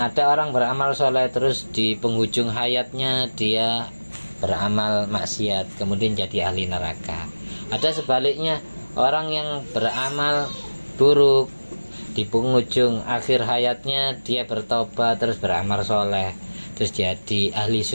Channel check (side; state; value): both; inverted; correlation -1.00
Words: ada orang beramal soleh, terus di penghujung hayatnya dia beramal maksiat, kemudian jadi ahli neraka. Ada sebaliknya, orang yang beramal buruk, di penghujung akhir hayatnya dia bertobat terus beramal soleh, terus jadi ahli